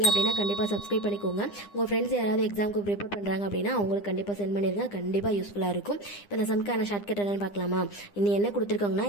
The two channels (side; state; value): right; late; 9.9 ms